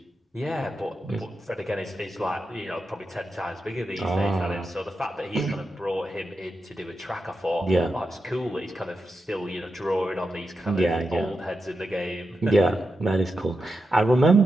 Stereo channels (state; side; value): normal; both; correlation 0.88